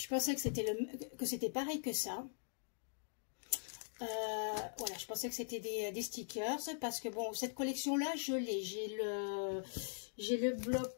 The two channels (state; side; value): silent; right; digital silence